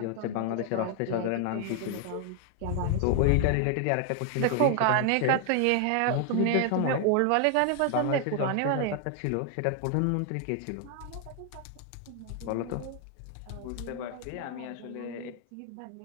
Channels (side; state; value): both; different; correlation 0.00